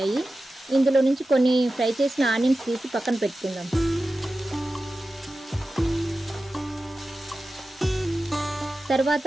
ఇందులో నుంచి కొన్ని ఫ్రై చేసిన ఆనియన్స్ తీసి పక్కన పెట్టుకుందాం. తర్వాత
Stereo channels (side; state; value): both; normal; correlation 0.94